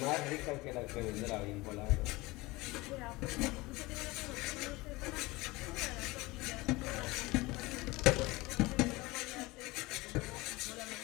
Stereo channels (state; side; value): quieter; right; 21.8 dB